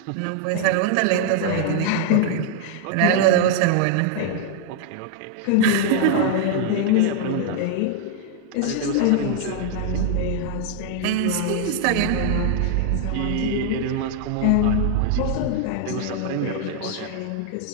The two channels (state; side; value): different; both; correlation 0.00